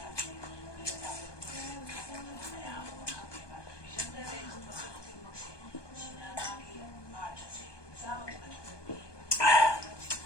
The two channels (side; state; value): right; late; 1.2 ms